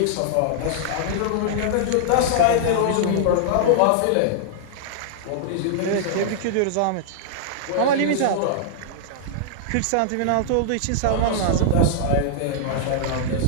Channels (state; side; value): different; both; correlation -0.01